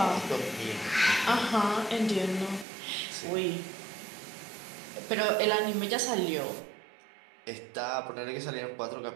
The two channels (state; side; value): drops out; left; at 2.7 s